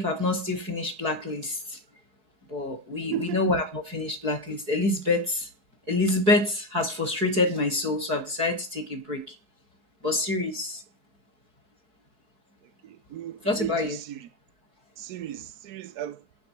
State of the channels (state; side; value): late; left; 4.7 ms